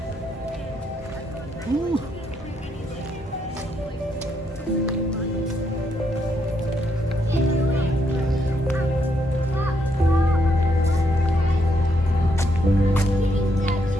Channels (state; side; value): normal; both; correlation 0.76